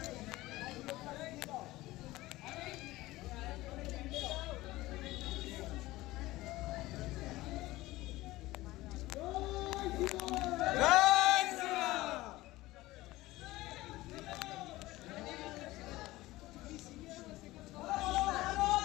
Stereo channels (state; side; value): quieter; right; 18.3 dB